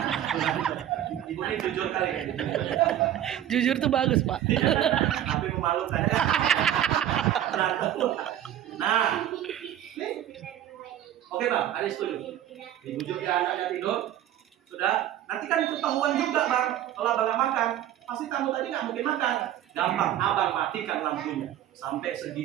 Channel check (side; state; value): left; quieter; 11.7 dB